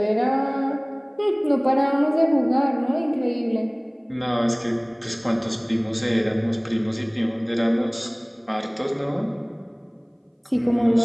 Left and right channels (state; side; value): identical; both; correlation 1.00